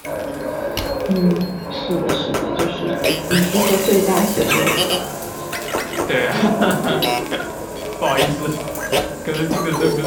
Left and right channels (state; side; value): identical; both; correlation 1.00